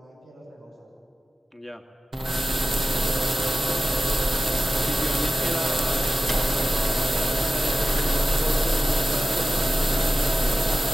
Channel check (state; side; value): normal; both; correlation 0.93